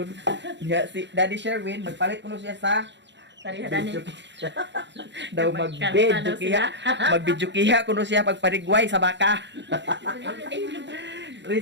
Nga si Daddy Sherwin, magpalit ko no siya sa Parihadani. daw mag-video kiha. Mag-video kiha kuno siya pagparigway sa baka. Re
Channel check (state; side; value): late; left; 0.52 ms